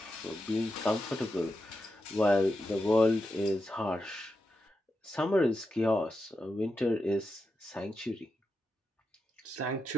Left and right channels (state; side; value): normal; both; correlation 0.87